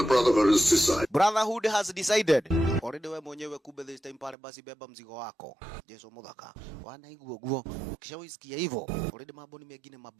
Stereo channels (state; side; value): drops out; left; at 4.4 s